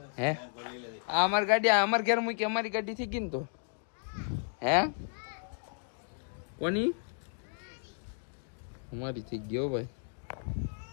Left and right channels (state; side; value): silent; right; digital silence